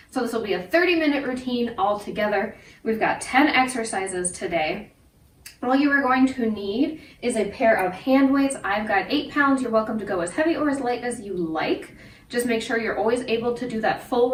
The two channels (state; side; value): identical; both; correlation 1.00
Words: So this will be a 30-minute routine all together. We've got 10 exercises today. All you are going to need is a pair of hand weights. I've got 8 pounds. You're welcome to go as heavy or as light as you like. Just make sure you're always able to do that full